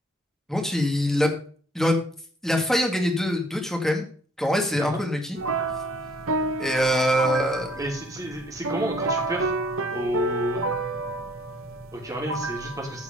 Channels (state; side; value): normal; both; correlation 0.61